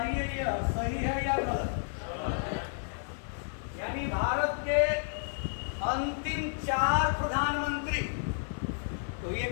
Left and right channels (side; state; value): right; silent; 56 dB below the other